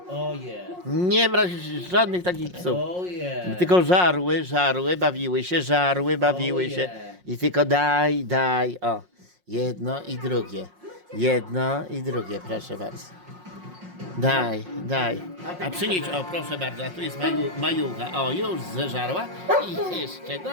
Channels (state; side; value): late; left; 5.5 ms